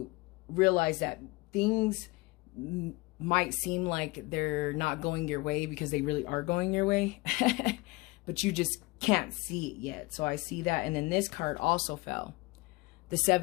realize that things might seem like they're not going your way because they really are going your way. But you just can't see it yet. So I see that. And then this card also fell. The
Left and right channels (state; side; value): quieter; right; 23.2 dB